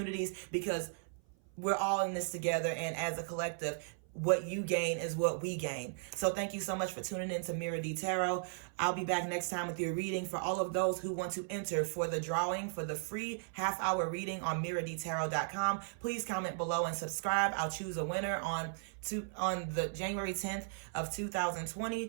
because we're all in this together, and as a collective, what you gain is what we gain. So thank you so much for tuning in to Mirror D Tarot. I'll be back next time with your reading. For all of those who want to enter for the drawing for the free half-hour reading on mirrordtarot.com, please comment below and subscribe. I'll choose a winner on the January 10th of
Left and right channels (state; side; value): silent; left; 54 dB below the other